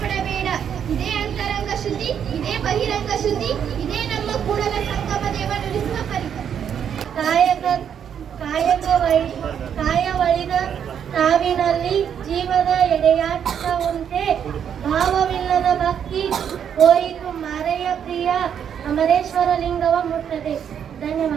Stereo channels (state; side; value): quieter; left; 8.4 dB